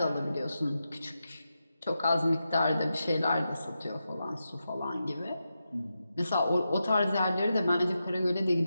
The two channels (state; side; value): inverted; both; correlation -0.89